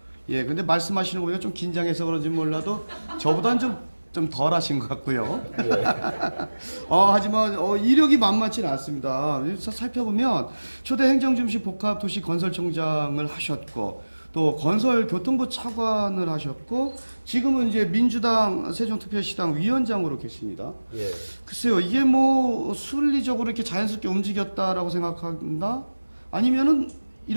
근데 말씀하시는 거 보니까 좀 긴장해서 그런지 몰라도 저보다는 좀 덜 하신 것 같고요. 네. 하지만 이력이 만만치는 않습니다. 살펴보면 초대 행정중심 복합도시건설청장을 하셨고 또 건설교통부 차관을 하셨고 지금은 이제 민주당 세종특별시당 위원장으로 계십니다. 예. 글쎄요, 이게 순리적으로 이렇게 자연스럽게 움직였다라고 생각한다? 아니면은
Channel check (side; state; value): both; inverted; correlation -1.00